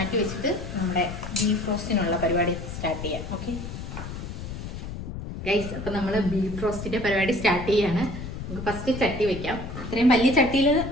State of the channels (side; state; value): left; noise; rumble, 8 dB below the sound